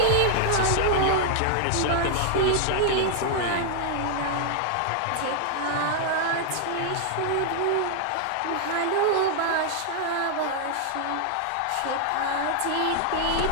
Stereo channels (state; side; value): different; both; correlation 0.00